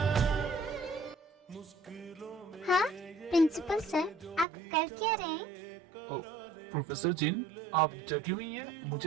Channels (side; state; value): left; drops out; at 4.5 s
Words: हाँ प्रिंसिपल सर, आप कर क्या रहे हैं? ओ, प्रोफेसर जिन आप जगी हुई हैं?